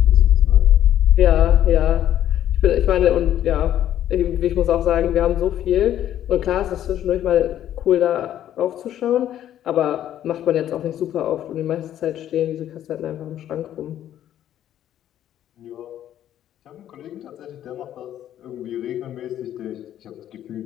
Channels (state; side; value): quieter; right; 11.4 dB